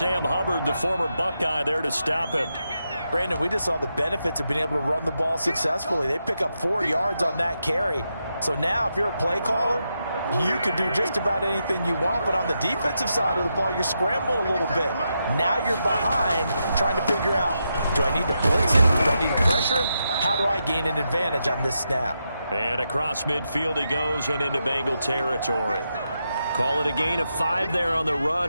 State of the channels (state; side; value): inverted; both; correlation -0.85